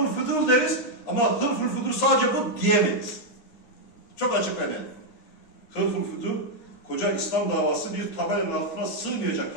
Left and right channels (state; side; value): late; right; 9.7 ms